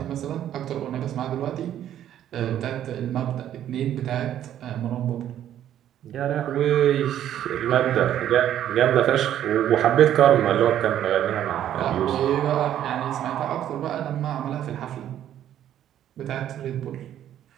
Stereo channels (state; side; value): quieter; left; 11.1 dB